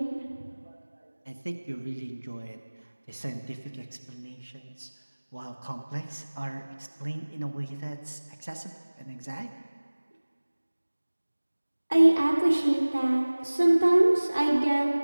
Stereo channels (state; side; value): inverted; both; correlation -1.00